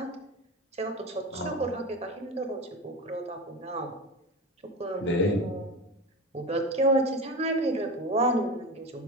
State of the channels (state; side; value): normal; both; correlation 0.25